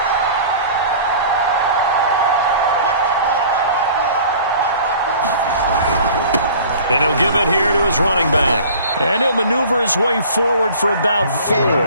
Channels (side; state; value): both; inverted; correlation -0.45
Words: And he'll give it here to his running back. And he'll maneuver his way forward for about 4.